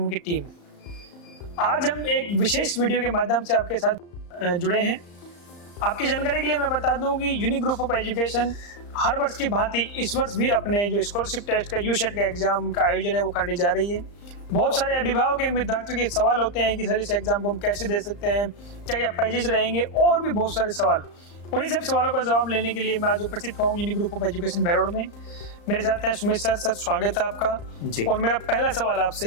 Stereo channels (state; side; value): late; right; 35 ms